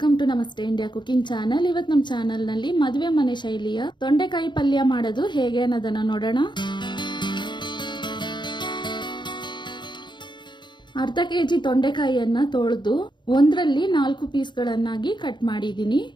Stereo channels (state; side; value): late; right; 0.22 ms